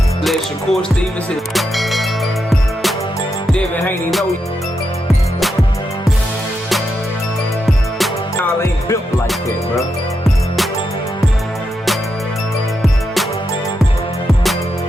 Let Shakur Stevenson. Devin Haney know y'all ain't built like that, bro.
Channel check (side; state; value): both; normal; correlation 0.85